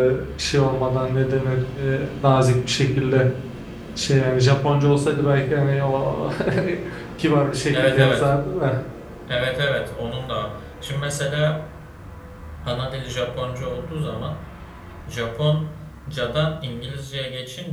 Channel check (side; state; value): both; identical; correlation 1.00